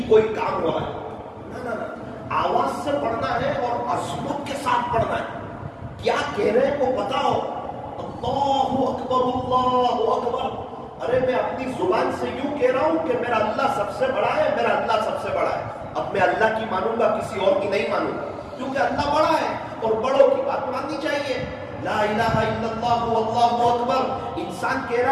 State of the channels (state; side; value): identical; both; correlation 1.00